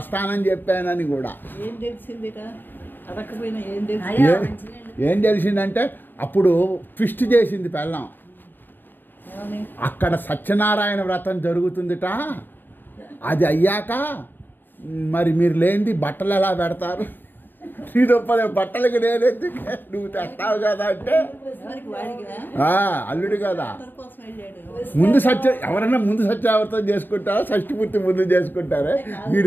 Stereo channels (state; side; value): late; right; 0.093 ms